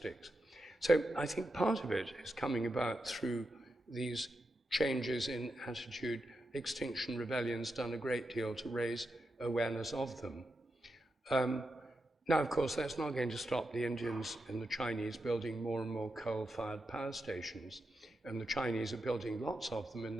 So I think part of it is coming about through these changes in attitude. Extinction Rebellion's done a great deal to raise awareness of them. Now, of course, that's not going to stop the Indians and the Chinese building more and more coal-fired power stations, and the Chinese are building lots of them in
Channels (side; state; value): both; normal; correlation 0.87